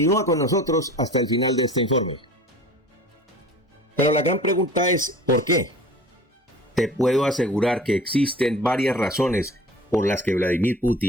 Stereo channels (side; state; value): both; normal; correlation 0.42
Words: con nosotros hasta el final de este informe. Pero la gran pregunta es, ¿por qué? Te puedo asegurar que existen varias razones por las que Vladimir